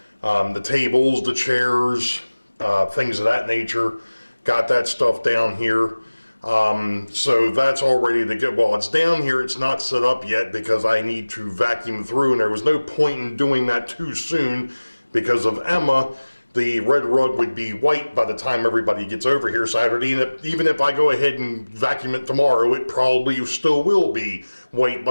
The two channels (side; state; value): both; inverted; correlation -1.00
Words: The tables, the chairs, things of that nature. Got that stuff down here. So that's all ready to go. Well, it's down here, it's not set up yet because I need to vacuum through, and there was no point in doing that too soon because of Emma. The red rug would be white by the time everybody gets over here Saturday, and even if I go ahead and vacuum it tomorrow, it probably still will be white